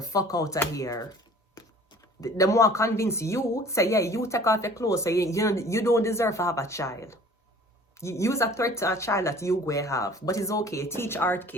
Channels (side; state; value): both; normal; correlation 0.49